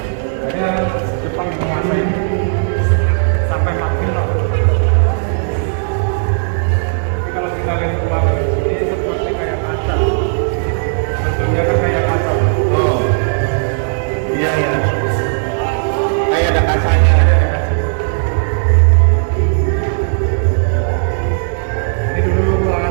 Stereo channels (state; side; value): silent; left; digital silence